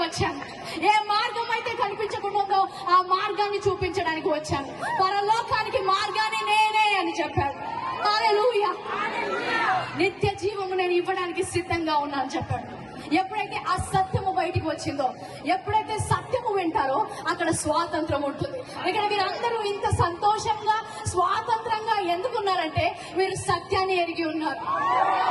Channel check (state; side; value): identical; both; correlation 1.00